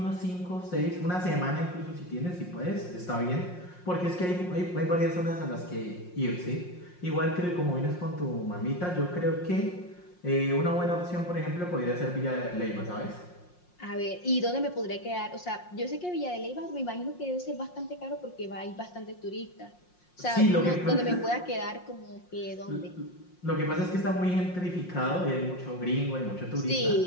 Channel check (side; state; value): right; late; 5.6 ms